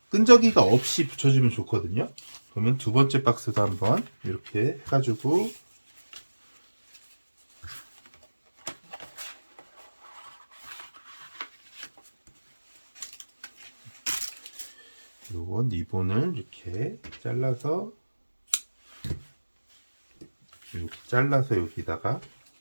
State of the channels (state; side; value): inverted; both; correlation -1.00